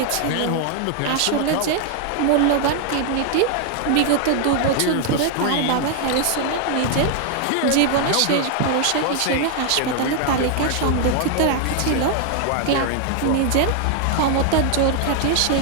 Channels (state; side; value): different; both; correlation 0.00